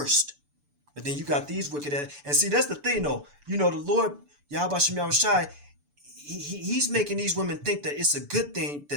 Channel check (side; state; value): left; late; 6.9 ms